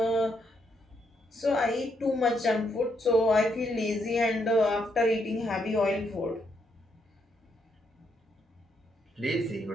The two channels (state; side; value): normal; both; correlation 0.77